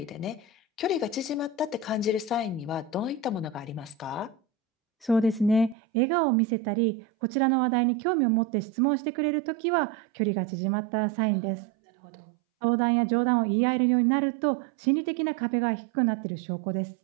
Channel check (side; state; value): left; drops out; at 5.8 s